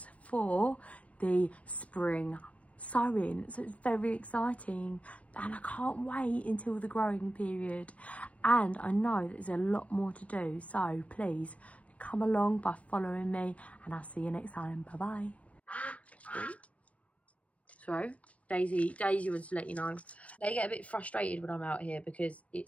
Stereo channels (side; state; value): right; late; 0.065 ms